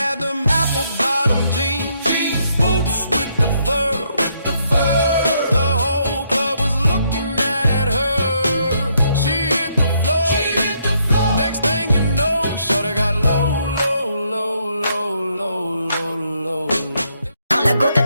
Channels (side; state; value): both; inverted; correlation -0.73